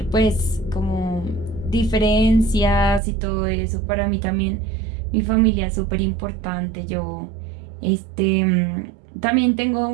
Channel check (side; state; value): left; drops out; at 3.0 s